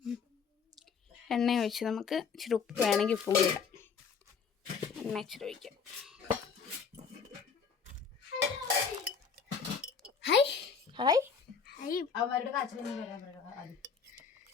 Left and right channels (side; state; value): right; quieter; 6.0 dB